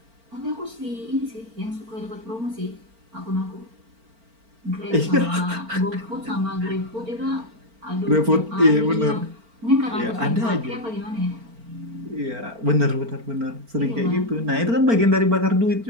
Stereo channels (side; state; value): left; late; 4.4 ms